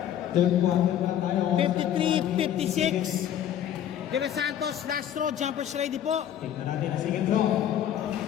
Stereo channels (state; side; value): quieter; right; 10.5 dB